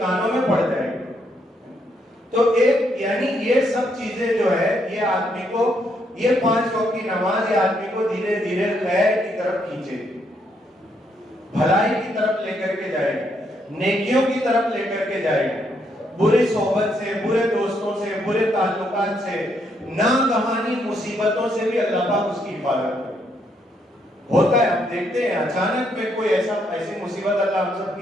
میں پڑ جائے گی۔ تو ایک یعنی یہ سب چیزیں جو ہے یہ آدمی کو، یہ 5 وقت کی نماز یہ آدمی کو دھیرے دھیرے خیر کی طرف کھینچے گی، بھلائی کی طرف لے کر کے جائے گی، نیکیوں کی طرف لے کر کے جائے گی، برے صحبت سے، برے دوستوں سے، برے تعلقات سے، ناگہانی مصیبتوں سے بھی اللہ پاک اس کی حفاظت کرے۔ ہوتا ہے، ہم دیکھتے ہیں اچانک میں کوئی ایسی مصیبت، اللہ ہم سب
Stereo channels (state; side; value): normal; both; correlation 0.75